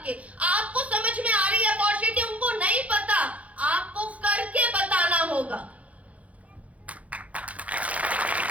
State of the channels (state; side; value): late; left; 0.067 ms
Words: आपको समझ में आ रही है अपॉर्चुनिटी, उनको नहीं पता, आपको करके बताना होगा।